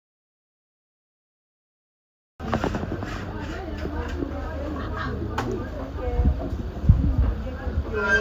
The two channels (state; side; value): identical; both; correlation 1.00